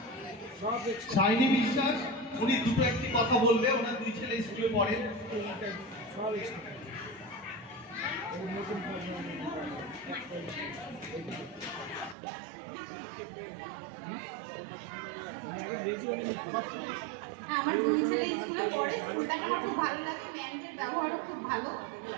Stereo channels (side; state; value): left; drops out; at 12.2 s